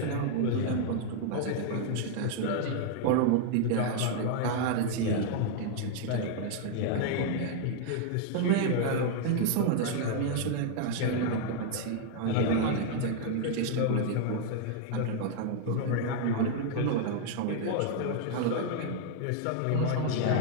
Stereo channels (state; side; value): different; both; correlation 0.00